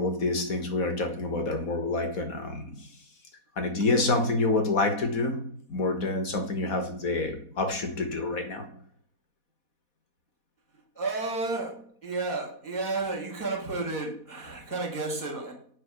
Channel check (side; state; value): right; late; 4.1 ms